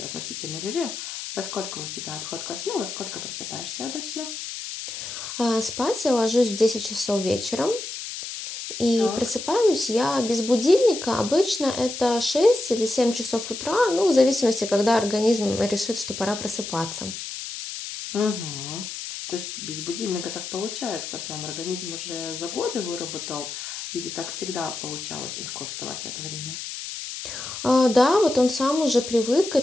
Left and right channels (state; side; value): noise; left; hiss, 8 dB below the sound